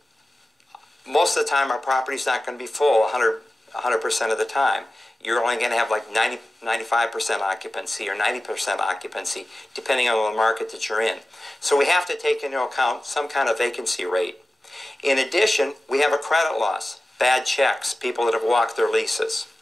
Most of the time our property's not going to be full 100% of the time. You're only going to have like 95% occupancy or 90% occupancy, depending on the market that you're in. So we have to take into account some kind of vacancy rate. In addition, we have a credit loss, bad checks, people that have walked their leases.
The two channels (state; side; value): normal; both; correlation 0.95